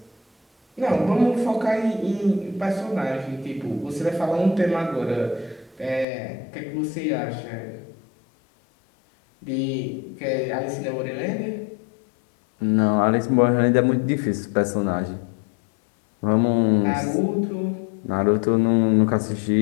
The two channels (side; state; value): right; drops out; at 6.1 s